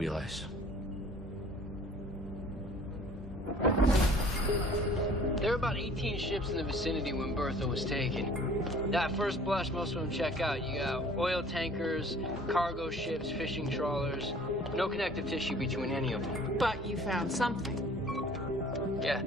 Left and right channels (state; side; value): normal; both; correlation 0.52